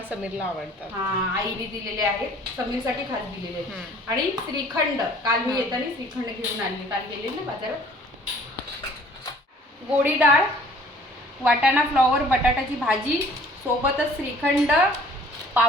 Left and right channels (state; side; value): normal; both; correlation 0.53